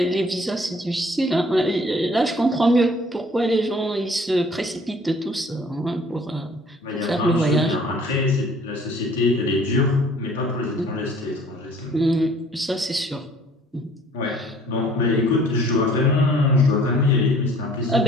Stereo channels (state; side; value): normal; both; correlation 0.55